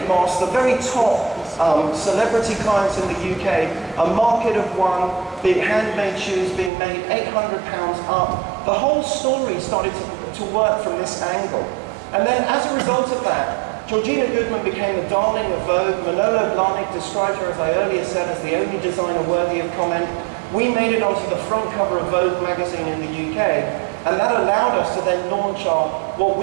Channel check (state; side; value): drops out; left; at 6.7 s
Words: Moss, the very top celebrity clients in the UK, a market of one, big handmade shoes being made £800 up. The whole story started to work from this angle. And then as a result of that, Georgina Goodman became the darling of Vogue. Manolo Blahnik described her, as I earlier said, as the only designer worthy of comment. We made it onto the front cover of Vogue magazine in the UK, and that allowed us to then launch our, what